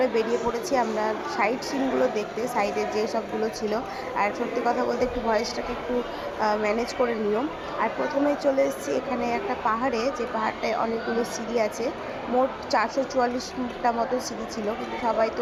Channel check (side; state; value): both; identical; correlation 1.00